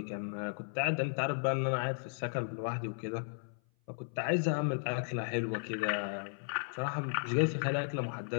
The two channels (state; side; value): silent; right; 54 dB below the other